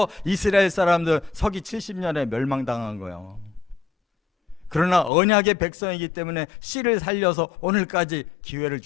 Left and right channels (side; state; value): right; drops out; at 5.1 s